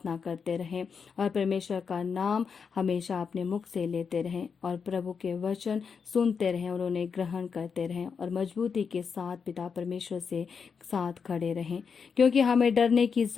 करते रहें और परमेश्वर का नाम हमेशा अपने मुख से लेते रहें और प्रभु के वचन सुनते रहें और उन्हें ग्रहण करते रहें और मजबूती के साथ पिता परमेश्वर से साथ खड़े रहें, क्योंकि हमें डरने की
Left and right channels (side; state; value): right; quieter; 6.0 dB